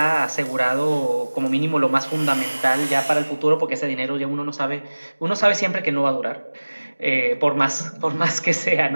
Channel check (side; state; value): both; inverted; correlation -1.00